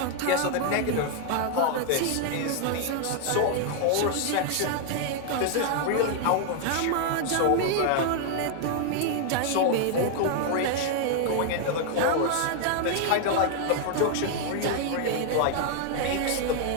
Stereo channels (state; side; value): different; both; correlation 0.00